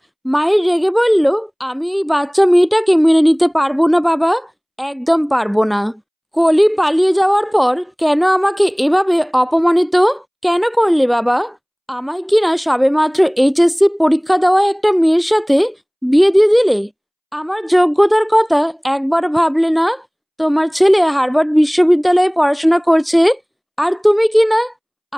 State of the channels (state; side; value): identical; both; correlation 1.00